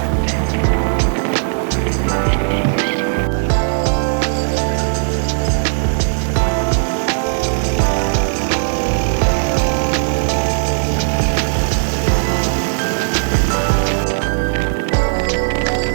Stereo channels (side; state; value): left; silent; digital silence